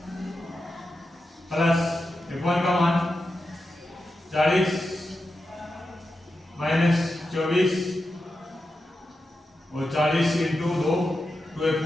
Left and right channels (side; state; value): both; normal; correlation 0.89